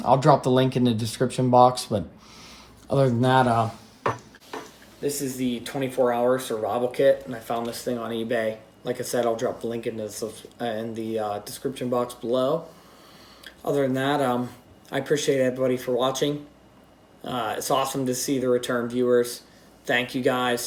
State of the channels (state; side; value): identical; both; correlation 1.00